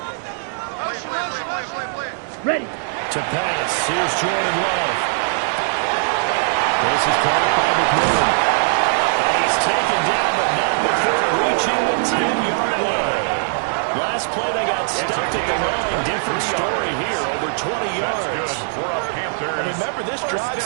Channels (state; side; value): silent; left; digital silence